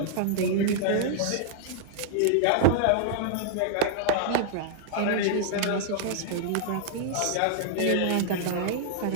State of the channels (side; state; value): both; different; correlation -0.01